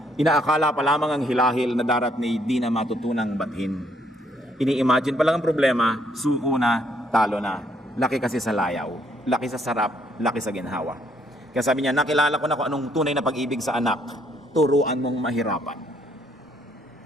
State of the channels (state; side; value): normal; both; correlation 0.69